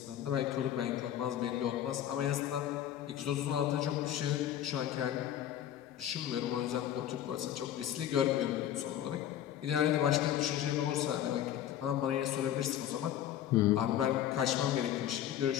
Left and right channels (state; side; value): quieter; right; 11.1 dB